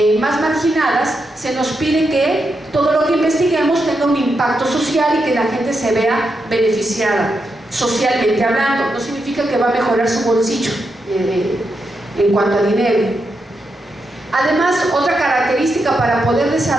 más marginadas, se nos pide que todo lo que investiguemos tenga un impacto social y que la gente se vea beneficiada socialmente hablando. No significa que va a mejorar su bolsillo en cuanto a dinero. Además, otra característica para poder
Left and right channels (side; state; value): both; normal; correlation 0.85